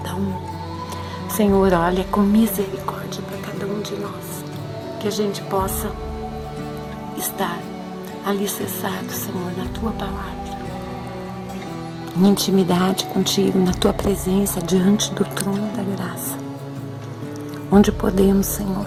um. Senhor, olha com misericórdia para cada um de nós, que a gente possa estar alicerçado, Senhor, na tua palavra, em intimidade contigo, na tua presença, diante do trono da graça, onde podemos, Senhor,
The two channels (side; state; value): both; identical; correlation 1.00